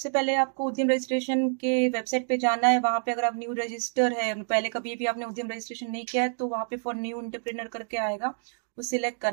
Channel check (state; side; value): silent; left; digital silence